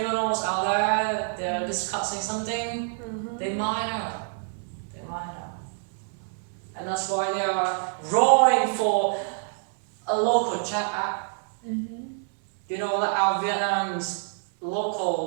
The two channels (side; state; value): left; silent; 60 dB below the other